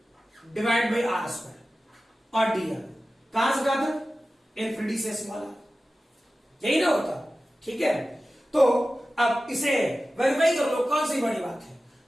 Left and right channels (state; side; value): normal; both; correlation 0.95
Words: divide by R square, और डी आर कहां से कहा था, इन्फिनिटी से स्मॉल आर, यही ना होता, ठीक है। तो अब इसे वेरीफाई कर लो, कौन सी बड़ी बात है,